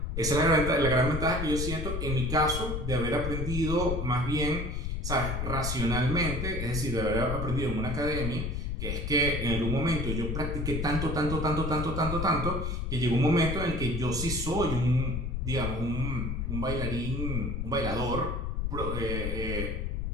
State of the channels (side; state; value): left; noise; rumble, 2 dB below the sound